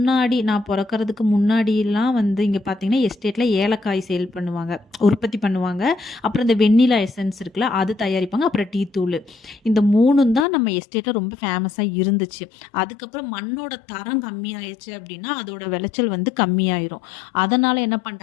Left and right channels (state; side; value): drops out; right; at 10.5 s